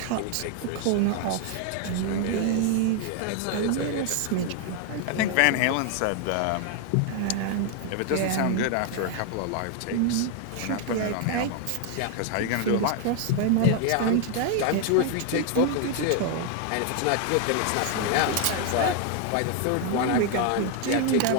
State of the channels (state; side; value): different; both; correlation 0.00